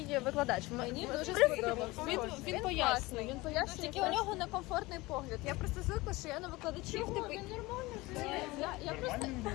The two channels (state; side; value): quieter; right; 21.4 dB